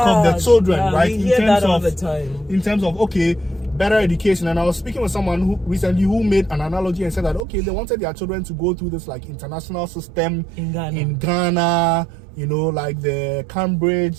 of their children, right? We hear that all the time. In terms of, okay, better education. And I was speaking with someone who recently made an analogy and said that, okay, they wanted their children to go through this like international system in Ghana, you know, like the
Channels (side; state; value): left; drops out; at 7.5 s